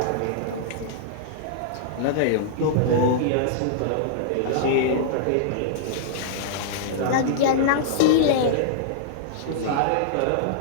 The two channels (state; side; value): different; both; correlation -0.02